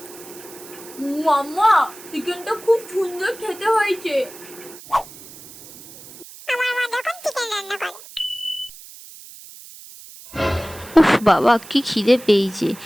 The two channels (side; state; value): right; noise; hiss, 18 dB below the sound